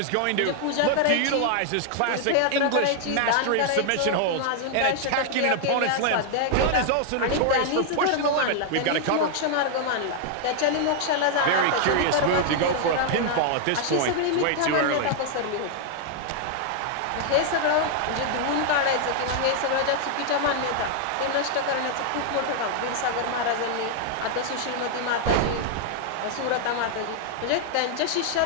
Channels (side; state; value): both; different; correlation 0.00